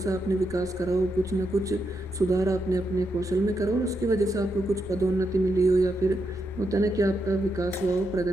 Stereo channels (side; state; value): both; normal; correlation 0.83